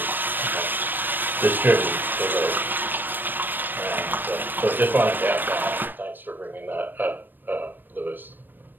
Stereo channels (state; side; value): late; left; 0.092 ms